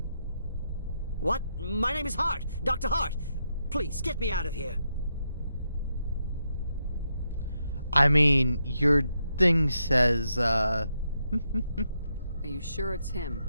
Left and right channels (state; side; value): inverted; both; correlation -0.82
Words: What? My name is Hart. Dr. Hart. Please, get me out of here. I mean, your thing says, Are you sure it's him?